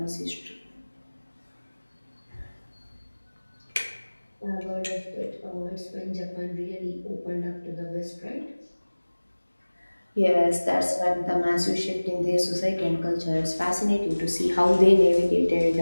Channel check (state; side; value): inverted; both; correlation -1.00